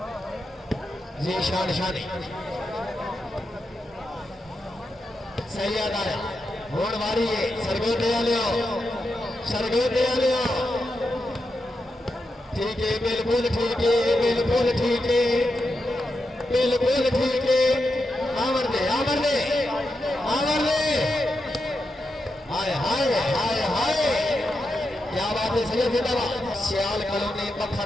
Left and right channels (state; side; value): normal; both; correlation 0.87